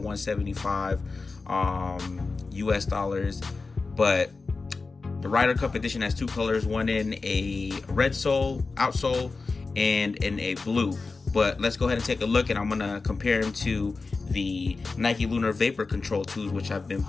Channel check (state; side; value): quieter; right; 4.0 dB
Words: $175 US dollars, but the Ryder Cup edition has two colors, one in a red sole, outsole, and in a blue. But let's go ahead and take a look, and I'm gonna compare them to the Nike Lunar Vapor Control 2s, which I've been